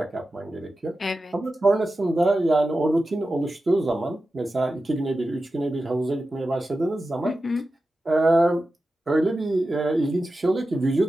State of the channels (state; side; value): normal; both; correlation 0.93